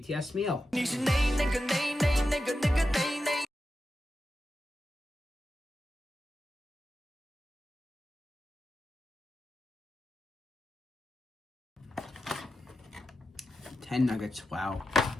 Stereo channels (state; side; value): normal; both; correlation 0.90